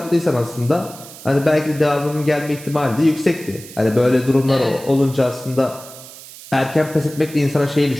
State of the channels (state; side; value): noise; right; hiss, 17 dB below the sound